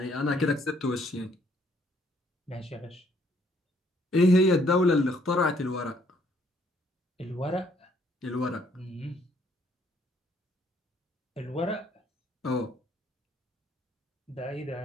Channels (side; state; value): both; normal; correlation 0.66